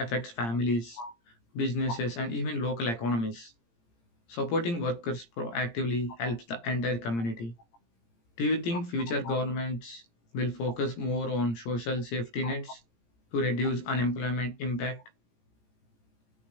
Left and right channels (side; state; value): right; late; 17 ms